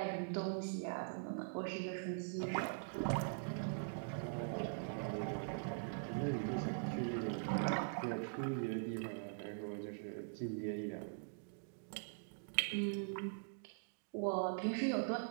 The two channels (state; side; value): silent; left; digital silence